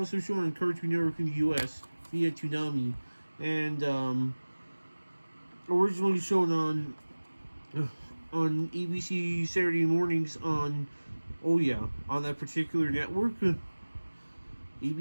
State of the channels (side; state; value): both; inverted; correlation -1.00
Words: shown on Cartoon Network in the US via Toonami. And, originally shown on ABC Saturday mornings on, oh yeah, on that particular network,